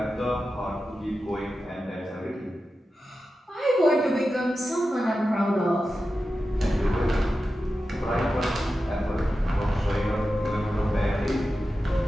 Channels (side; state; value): both; normal; correlation 0.92